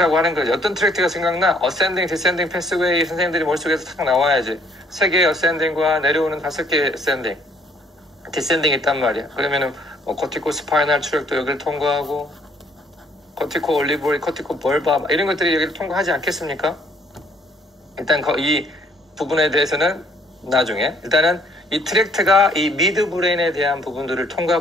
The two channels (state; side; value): normal; both; correlation 0.64